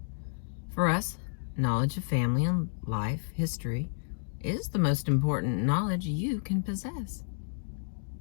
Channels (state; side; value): silent; right; digital silence